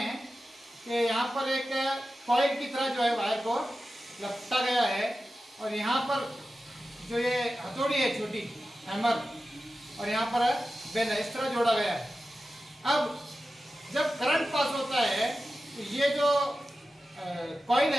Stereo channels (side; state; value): both; normal; correlation 0.93